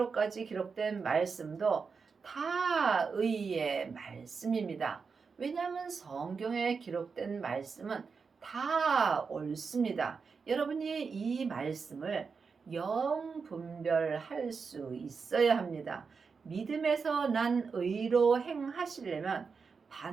기록된 말씀도 다 의의 말씀입니다. 왜냐하면 성경에 기록된 말씀은 다 옳습니다. 여러분이 이 말씀을 영분별할 수 있어야 합니다. 믿음에서 난 의로 행하시려면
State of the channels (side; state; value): left; quieter; 5.3 dB